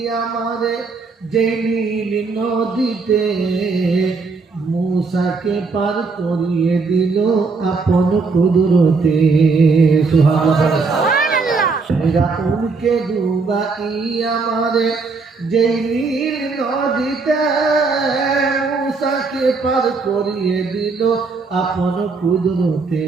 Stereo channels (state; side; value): quieter; left; 4.3 dB